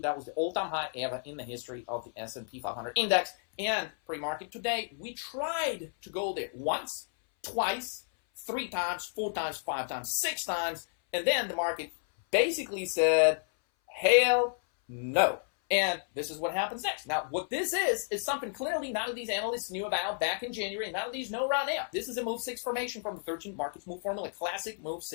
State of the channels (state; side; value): silent; right; 57 dB below the other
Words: That was the all-time high ever in the history of the S&P 500 index. And pre-market today, we tried to go there once, twice, 3 times, 4 times, 5 times, 6 times, and then the market basically said, hell no. And this is what happens next. Now, what this is something clearly none of these analysts knew about back in January, and none of these know right now. This is a Move 6 formation from the 13 Markets Move Formula, classic Move